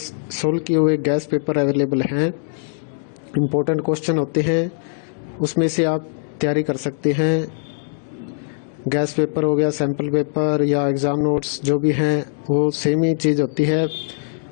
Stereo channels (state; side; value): silent; right; 65 dB below the other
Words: सोल्व किए हुए गैस पेपर अवेलेबल हैं। इम्पोर्टेंट क्वेश्चन होते हैं, उसमें से आप तैयारी कर सकते हैं। गैस पेपर हो गया, सैम्पल पेपर या एग्ज़ाम नोट्स जो भी हैं वो सेम ही चीज़ होती है।